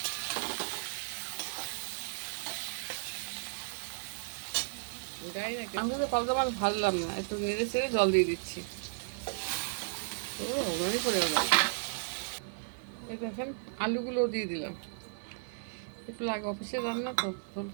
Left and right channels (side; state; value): left; silent; digital silence